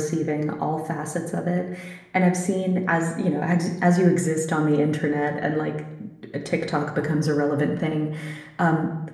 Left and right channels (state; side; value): identical; both; correlation 1.00